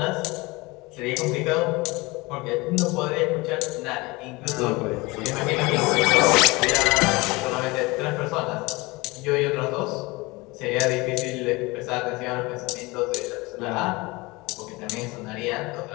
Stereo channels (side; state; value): right; quieter; 23.5 dB